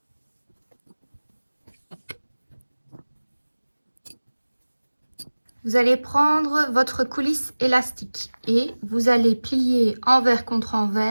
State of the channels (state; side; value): inverted; both; correlation -1.00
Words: Vous allez prendre votre coulisse élastique et vous allez plier envers contre